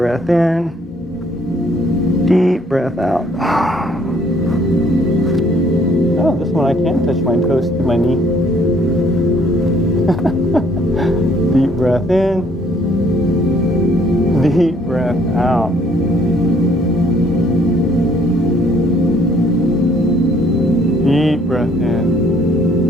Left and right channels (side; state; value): both; normal; correlation 0.63